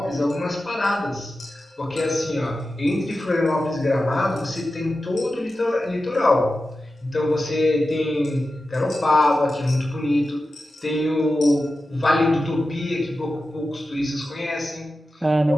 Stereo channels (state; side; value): normal; both; correlation 0.93